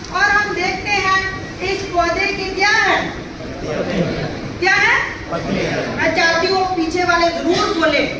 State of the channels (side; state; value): both; identical; correlation 1.00